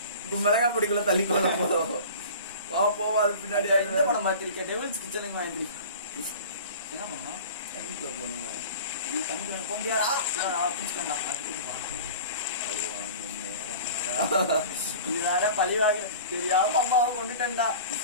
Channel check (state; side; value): inverted; both; correlation -0.40